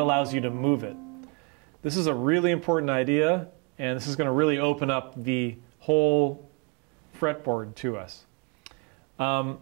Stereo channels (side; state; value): left; quieter; 29.7 dB